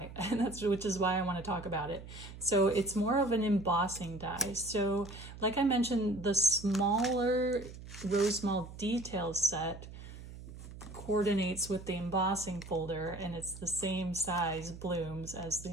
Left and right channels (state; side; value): noise; right; hum, 14 dB below the sound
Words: and which is why I want to talk about it. So it's more of an embossing die. So like I mentioned, the smaller Rosemal details set coordinates with the embossing folder, and it's the same size blooms as the